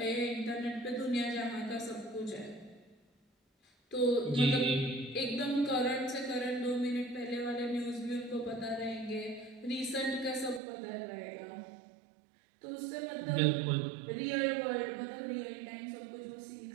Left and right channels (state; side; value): drops out; left; at 10.6 s